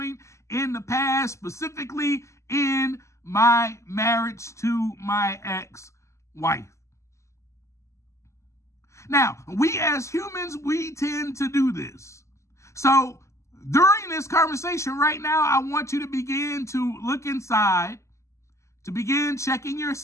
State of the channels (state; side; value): late; right; 0.14 ms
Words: in the past, specifically in my marriage to my ex-wife. Now, we as humans, we tend to do this. So during this conversation right now, I want you to begin to look inside, to begin checking